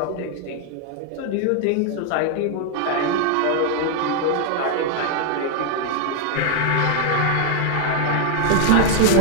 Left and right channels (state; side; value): different; both; correlation 0.00